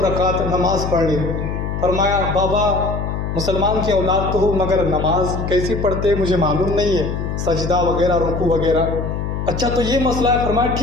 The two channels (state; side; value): noise; left; hum, 4 dB below the sound